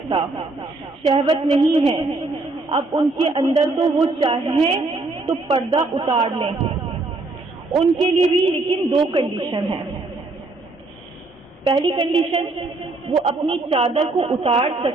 شہوت نہیں ہے، اب ان کے اندر تو وہ چاہیں تو پردہ اتار لیں۔ ان کے لیے بھی لیکن دو کنڈیشن ہیں۔ پہلی کنڈیشن، وہ اپنی چادر کو اتار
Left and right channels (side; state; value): left; quieter; 3.2 dB